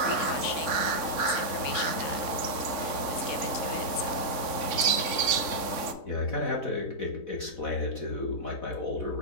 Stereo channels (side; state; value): right; late; 3.7 ms